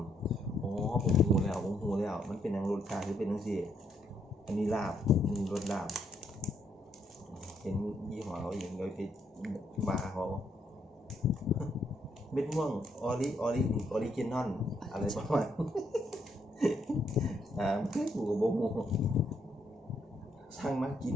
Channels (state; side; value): normal; both; correlation 0.74